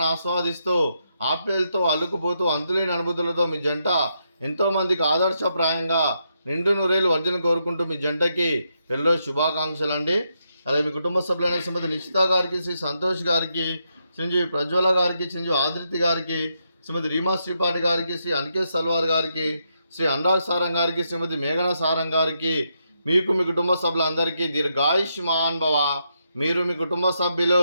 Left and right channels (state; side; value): inverted; both; correlation -0.80